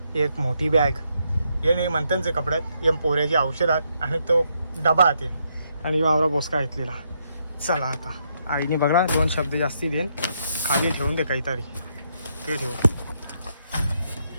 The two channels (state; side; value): inverted; both; correlation -0.77